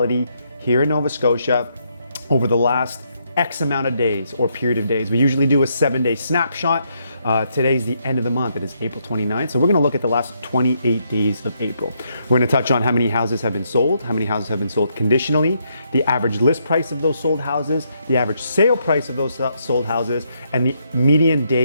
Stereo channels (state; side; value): inverted; both; correlation -0.76